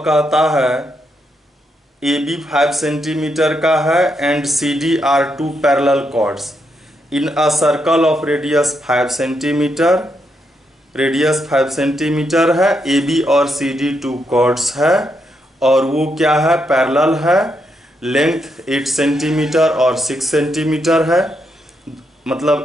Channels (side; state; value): both; normal; correlation 0.80